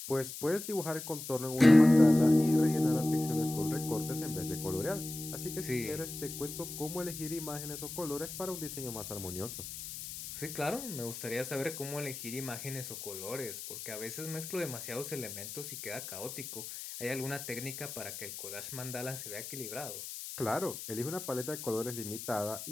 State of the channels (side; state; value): left; noise; hiss, 9 dB below the sound